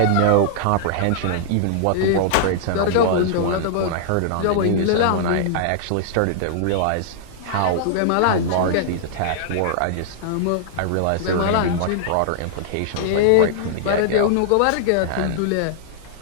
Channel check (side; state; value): both; different; correlation -0.01